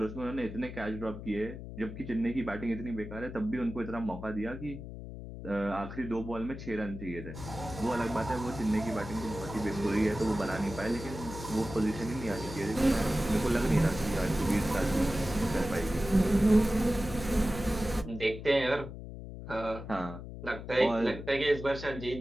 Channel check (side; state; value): left; noise; hum, 10 dB below the sound